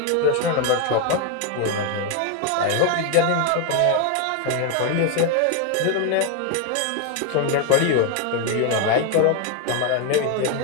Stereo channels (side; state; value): both; different; correlation 0.01